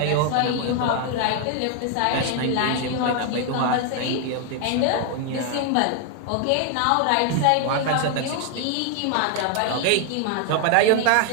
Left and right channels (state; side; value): different; both; correlation 0.00